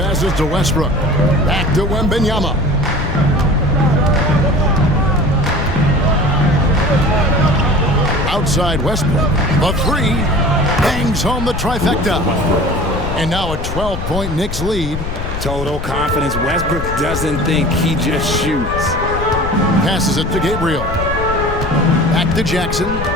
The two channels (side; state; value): left; noise; rumble, 6 dB below the sound